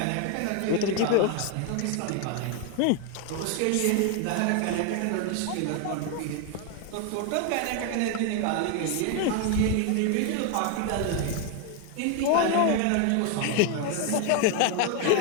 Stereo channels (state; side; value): different; both; correlation 0.01